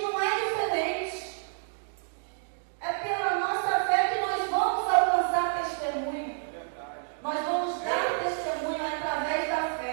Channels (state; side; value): silent; left; digital silence